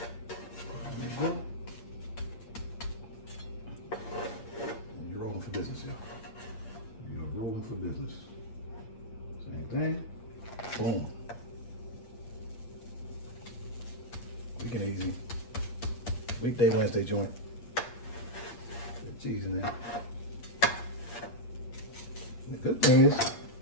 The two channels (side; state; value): right; late; 8.6 ms